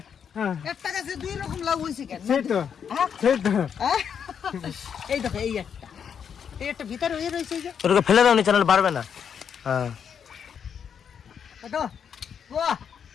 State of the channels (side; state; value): right; quieter; 7.6 dB